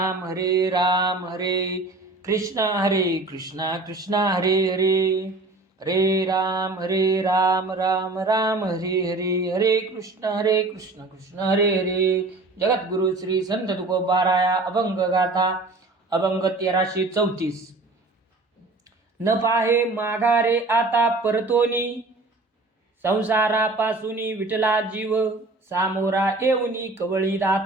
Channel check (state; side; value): quieter; left; 3.2 dB